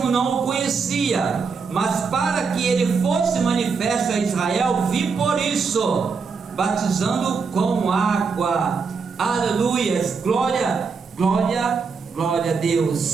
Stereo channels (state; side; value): quieter; left; 5.1 dB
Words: não o conhecia, mas para que ele fosse manifesto a Israel, vim por isso, batizando com água. Aleluias, glória, glória, glória a